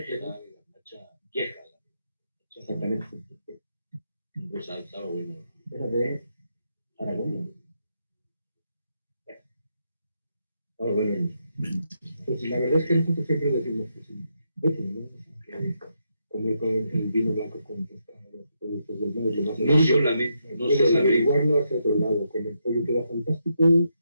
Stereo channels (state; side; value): inverted; both; correlation -0.81